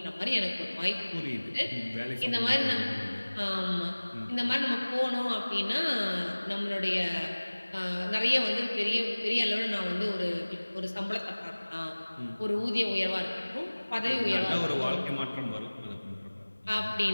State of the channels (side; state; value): both; inverted; correlation -1.00